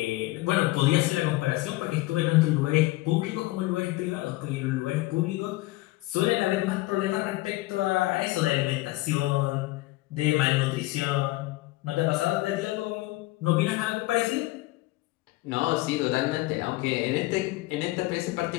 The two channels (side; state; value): right; quieter; 19.5 dB